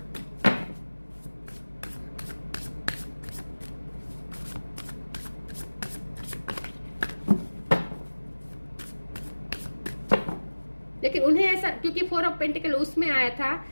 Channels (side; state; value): both; inverted; correlation -1.00